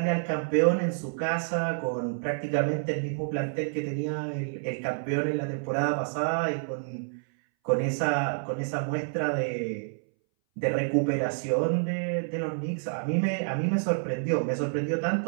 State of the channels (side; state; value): left; silent; 59 dB below the other